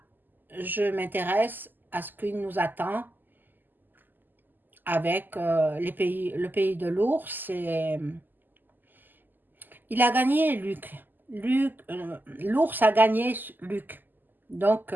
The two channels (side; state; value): left; late; 0.089 ms